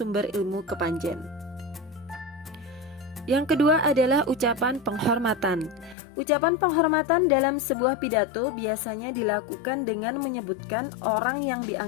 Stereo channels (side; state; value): right; drops out; at 6.0 s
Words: Ilmu Kepanjen. Yang kedua adalah ucapan penghormatan. Ucapan penghormatan dalam sebuah pidato biasanya dilakukan dengan menyebutkan orang yang